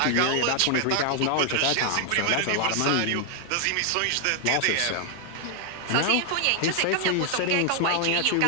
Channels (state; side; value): different; both; correlation 0.00